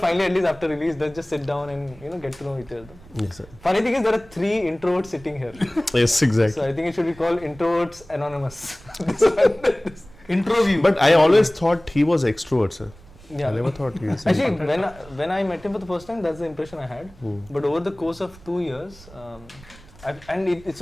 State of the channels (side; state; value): right; noise; rumble, 22 dB below the sound